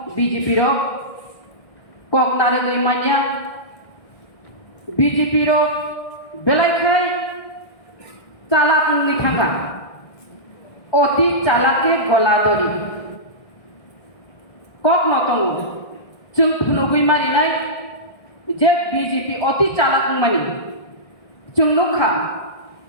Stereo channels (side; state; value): right; late; 1.6 ms